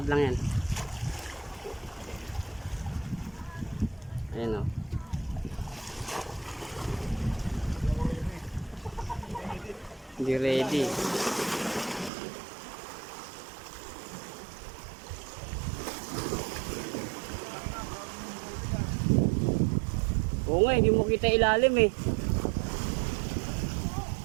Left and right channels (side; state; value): left; drops out; at 12.1 s